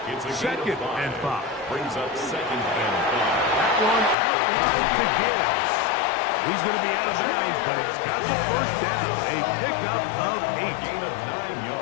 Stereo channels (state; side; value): drops out; right; at 4.2 s